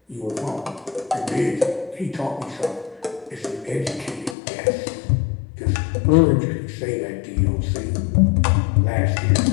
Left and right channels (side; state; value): right; drops out; at 4.4 s